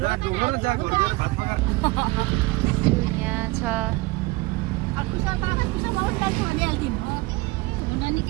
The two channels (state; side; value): quieter; left; 22.4 dB